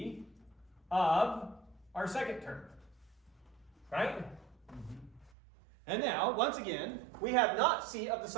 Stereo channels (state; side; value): drops out; left; at 5.3 s